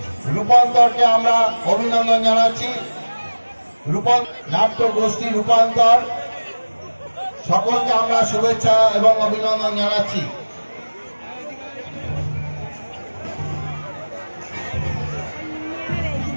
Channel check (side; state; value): both; inverted; correlation -1.00